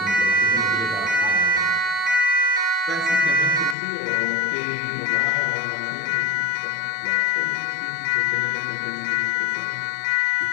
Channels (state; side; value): drops out; right; at 3.8 s